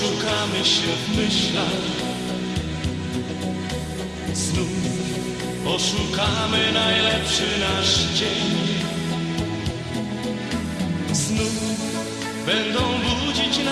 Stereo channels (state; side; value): identical; both; correlation 1.00